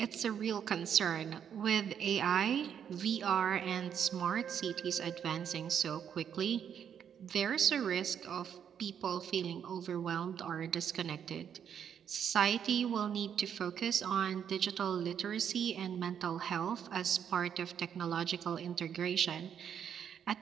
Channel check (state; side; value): quieter; left; 8.4 dB